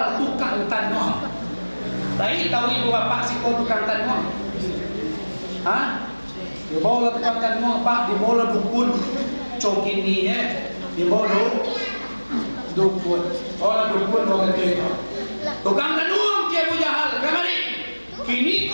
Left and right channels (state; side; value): inverted; both; correlation -1.00